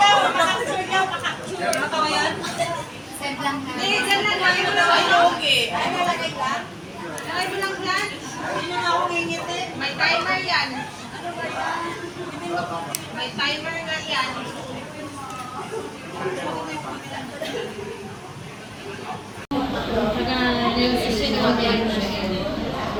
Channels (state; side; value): identical; both; correlation 1.00